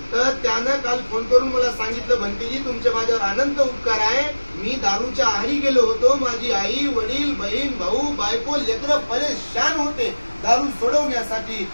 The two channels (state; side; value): inverted; both; correlation -1.00